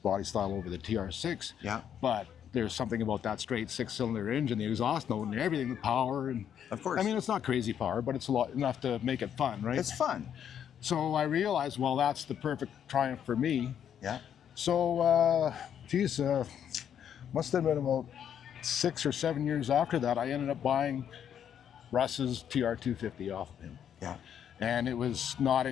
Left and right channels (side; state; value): right; quieter; 9.0 dB